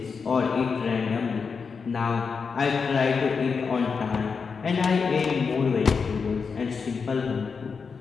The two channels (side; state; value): right; quieter; 5.4 dB